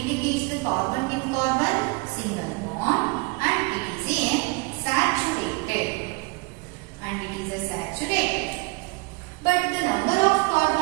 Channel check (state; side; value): quieter; left; 27.9 dB